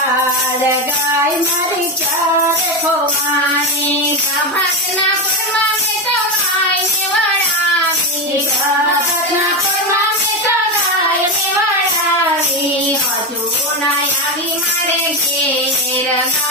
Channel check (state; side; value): normal; both; correlation 0.14